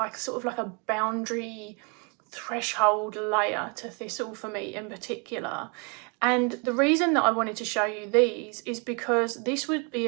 sort of like a boundary threshold layer to Thistle for me in particular. And the reason that I wanted to show you these is because this would be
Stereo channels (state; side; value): quieter; left; 34.4 dB